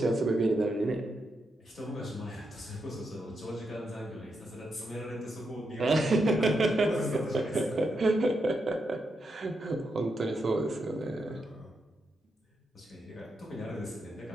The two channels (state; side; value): normal; both; correlation 0.84